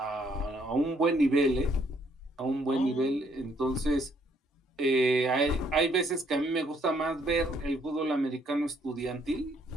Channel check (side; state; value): both; normal; correlation 0.68